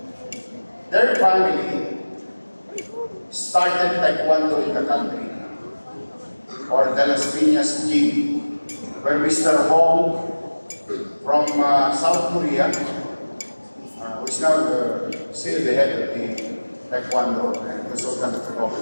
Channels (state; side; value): inverted; both; correlation -1.00